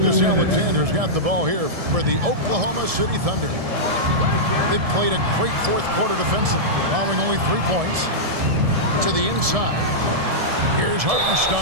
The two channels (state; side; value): late; left; 1.7 ms